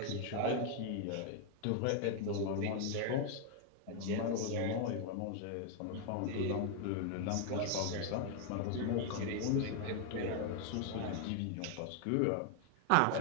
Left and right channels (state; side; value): different; both; correlation 0.00